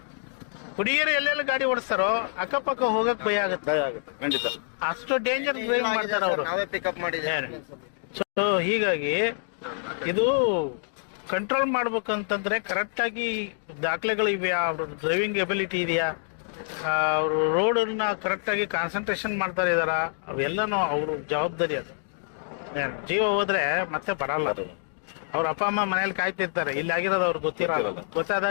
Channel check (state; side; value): silent; right; digital silence